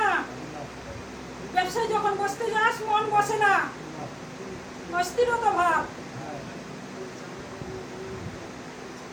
ব্যবসায় যখন বসতে যাস মন বসে না, অস্থিরতা ভাব।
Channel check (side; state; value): both; identical; correlation 1.00